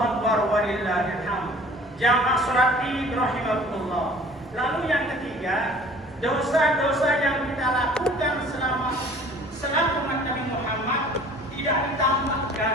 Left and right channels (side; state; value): both; normal; correlation 0.49